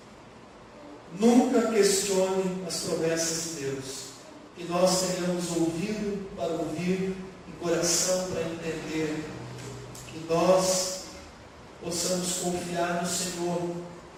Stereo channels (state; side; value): identical; both; correlation 1.00